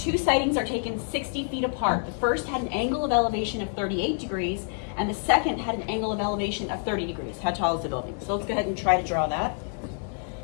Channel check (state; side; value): silent; right; 56 dB below the other